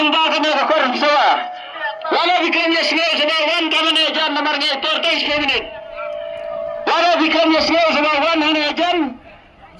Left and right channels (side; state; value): both; identical; correlation 1.00